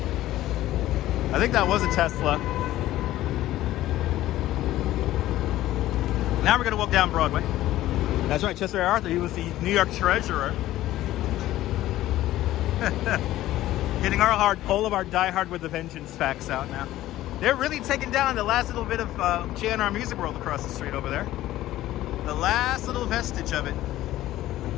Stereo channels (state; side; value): quieter; right; 14.8 dB